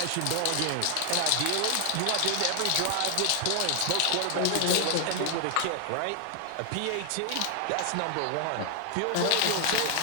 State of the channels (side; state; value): both; different; correlation 0.00